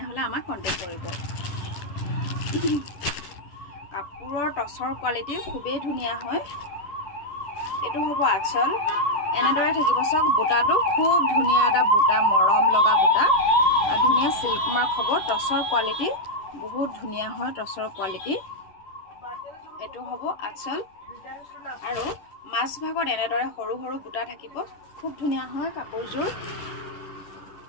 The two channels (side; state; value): right; late; 10 ms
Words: আমাক কন্টেক্ট কৰিব। কাপোৰৰ টচৰ কোৱালিটি খুবেই ধুনীয়া হয়। এইটো হ'ব আঁচল, এনেদৰে থাকিব। চাওক বুটাটো খুব ধুনীয়া এটা বুটা, মৰম লগা বুটা, ধুনীয়া চিল্ক মাৰ্ক হ'ব। টচৰ কোৱালিটি বহুত ধুনীয়া হয়। টচৰ কোৱালিটি এইটো হ'ব আঁচল আৰু মাছ ভাগত এনেদৰে সৰু সৰু বুটা থাকিব। খুব ধুনীয়া হয় কাপোৰযোৰ।